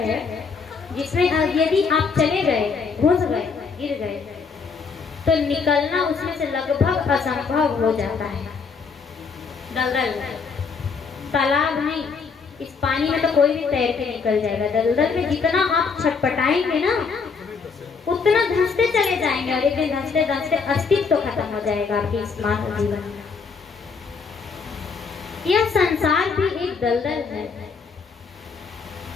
है जिसमें यदि आप चले गए, घुस गए, गिर गए, तो निकलना उसमें से लगभग असंभव हो जाता है। दलदल तालाब नहीं, इस पानी में तो कोई भी तैर के निकल जाएगा। दलदल में जितना आप छटपटाएंगे ना, उतना धंसते चले जाएंगे, और एक दिन धंसते धंसते अस्तित्व तो खत्म हो जाएगा आपके इस मानव जीवन में। यह संसार भी एक दलदल है।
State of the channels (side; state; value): right; quieter; 5.3 dB